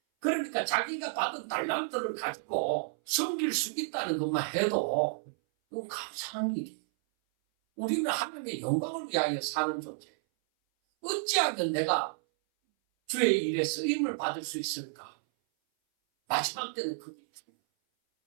그러니까 자기가 받은 달란트를 가지고 섬길 수 있다는 것만 해도 그건 감사한 일이에요. 우리는 하나님의 영광을 위하여 사는 존재예요. 어찌하면 내가 주의 일에 쓰임을 받을 수 있을까? 마지막 때는 그게 있습니다.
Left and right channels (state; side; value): silent; left; 57 dB below the other